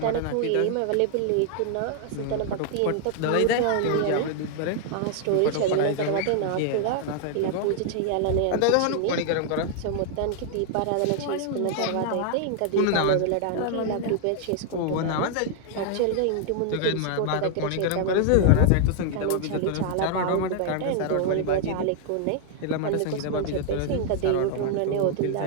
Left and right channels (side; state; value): both; different; correlation 0.00